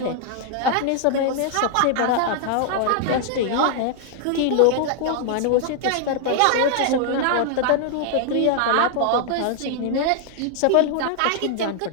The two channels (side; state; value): both; different; correlation 0.00